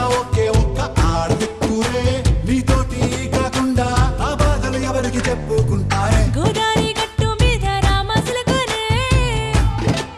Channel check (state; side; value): identical; both; correlation 1.00